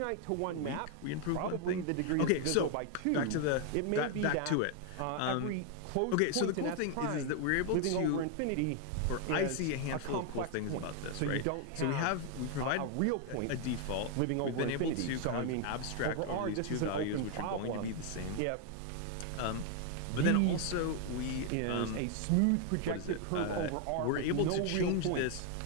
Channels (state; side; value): different; both; correlation 0.00